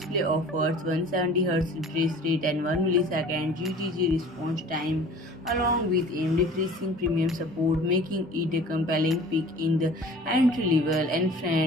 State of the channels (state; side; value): normal; both; correlation 0.45